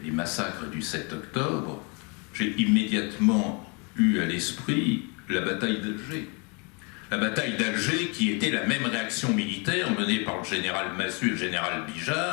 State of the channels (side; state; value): right; quieter; 32.8 dB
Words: les massacres du 7 octobre, j'ai immédiatement eu à l'esprit la bataille d'Alger. La bataille d'Alger qui était la même réaction militaire menée par le général Massu et le général